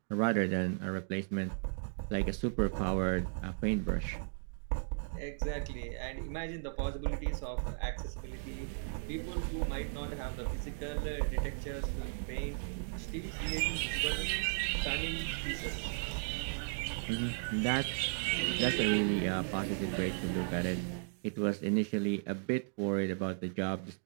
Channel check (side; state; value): left; silent; digital silence